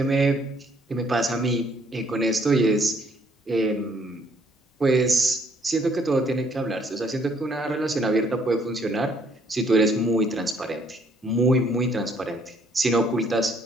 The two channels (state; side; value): normal; both; correlation 0.66